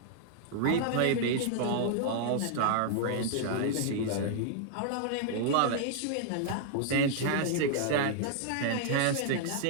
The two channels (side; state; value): both; different; correlation -0.01